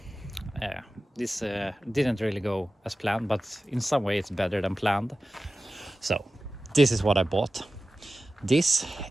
this didn't really go as planned, but in some way it's better than planned. So this is what I bought. This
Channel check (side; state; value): both; normal; correlation 0.95